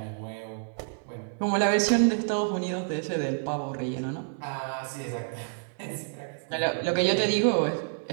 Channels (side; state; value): left; silent; 58 dB below the other